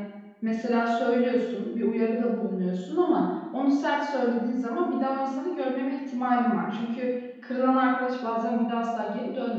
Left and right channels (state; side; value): identical; both; correlation 1.00